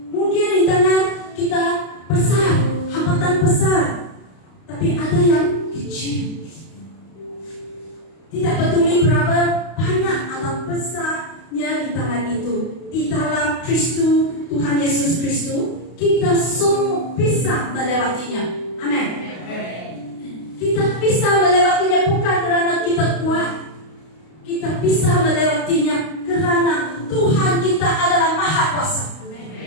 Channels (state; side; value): late; right; 32 ms